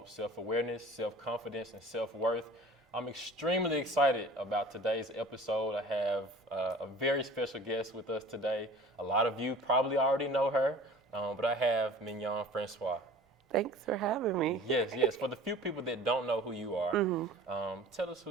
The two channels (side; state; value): both; normal; correlation 0.44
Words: self-awareness, self-confidence, and self-worth. I'm extremely excited about today's episode. I have a very special guest with us today. A lot of you probably already know her, but I have Mignon Francois. Thanks for having me. Yes. For the few people that don't know who you are, tell us